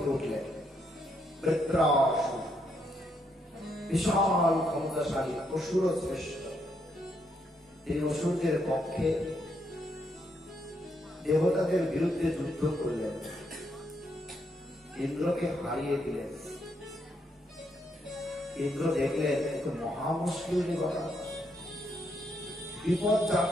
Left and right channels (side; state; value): both; normal; correlation 0.77